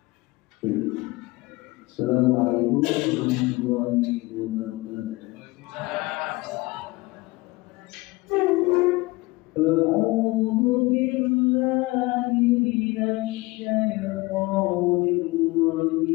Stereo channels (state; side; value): quieter; right; 22.4 dB